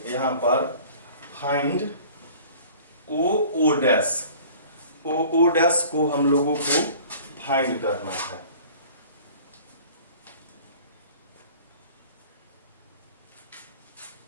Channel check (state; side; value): inverted; both; correlation -0.47